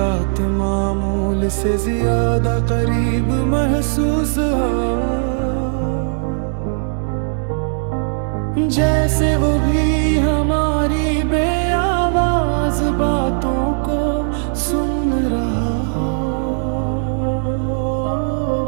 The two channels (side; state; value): left; silent; 61 dB below the other